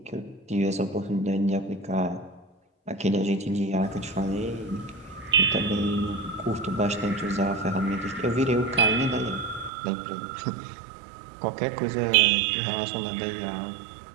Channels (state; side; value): drops out; left; at 9.7 s